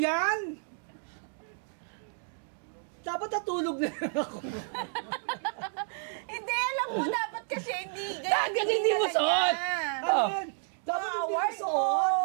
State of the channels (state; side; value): silent; left; 57 dB below the other